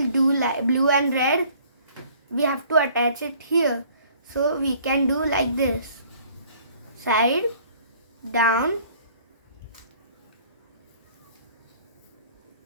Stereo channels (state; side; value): inverted; both; correlation -0.56